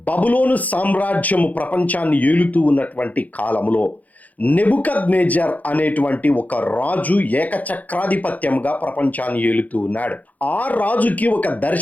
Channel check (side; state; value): right; late; 0.077 ms